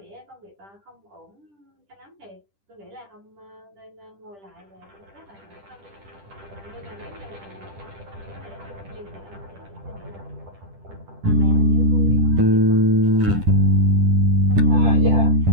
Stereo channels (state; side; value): late; left; 10 ms